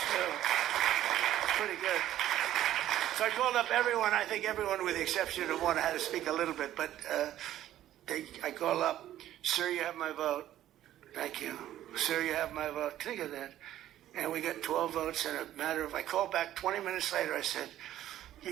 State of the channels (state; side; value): quieter; left; 12.7 dB